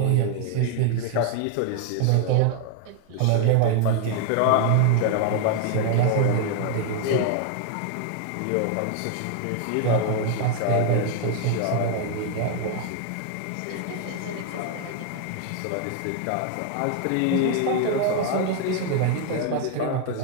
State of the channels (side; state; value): both; different; correlation 0.00